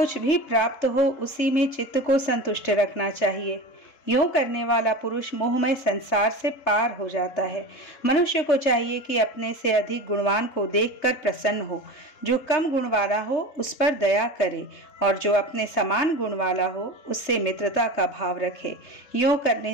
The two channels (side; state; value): right; late; 3.3 ms